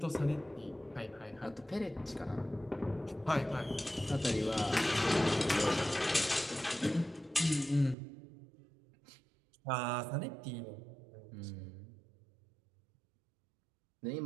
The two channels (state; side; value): drops out; left; at 8.0 s